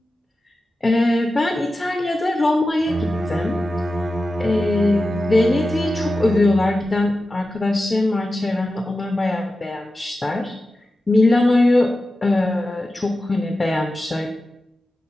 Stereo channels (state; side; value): normal; both; correlation 0.93